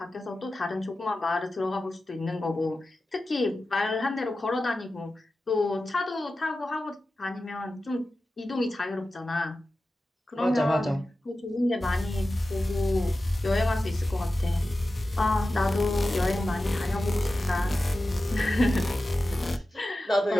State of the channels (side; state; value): both; normal; correlation 0.94